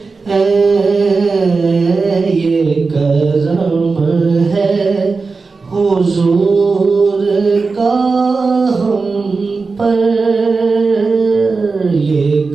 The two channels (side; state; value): left; quieter; 4.3 dB